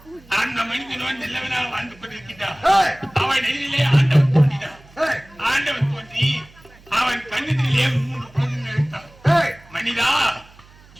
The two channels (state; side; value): noise; right; hum, 25 dB below the sound